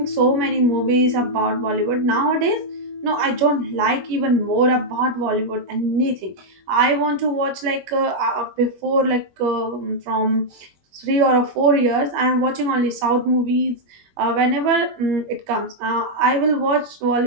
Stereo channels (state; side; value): late; left; 21 ms